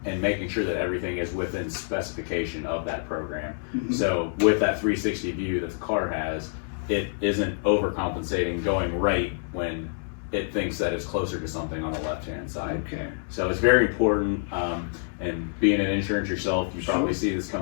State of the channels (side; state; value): right; silent; digital silence